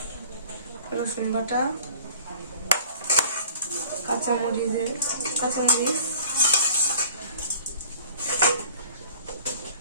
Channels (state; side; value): inverted; both; correlation -0.48